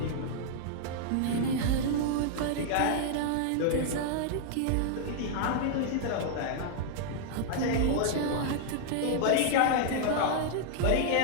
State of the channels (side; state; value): both; different; correlation -0.01